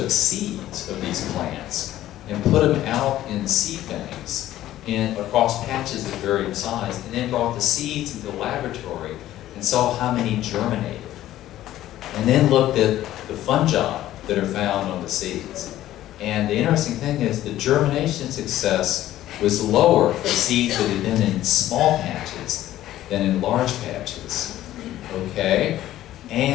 seeds of these plants and put them out in seed banks across patches of varying size, and then brought the seeds into the laboratory and saw how many germinated. And then looked at the fungi that are found on the seeds. And the interesting thing is the germination success was lower for seeds that had been in small patches than in large patches, okay?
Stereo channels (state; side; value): quieter; right; 13.7 dB